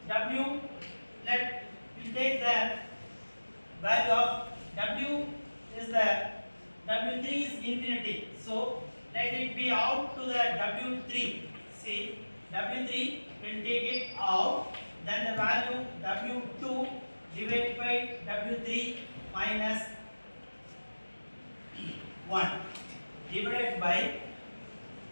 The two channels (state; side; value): inverted; both; correlation -1.00